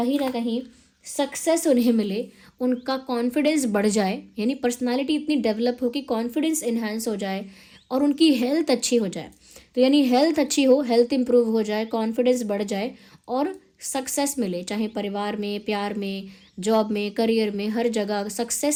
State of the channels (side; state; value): both; identical; correlation 1.00